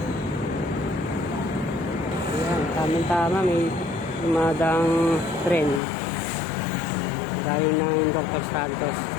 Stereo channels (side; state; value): right; drops out; at 5.8 s